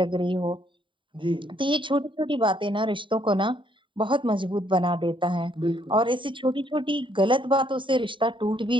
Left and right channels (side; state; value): left; late; 0.24 ms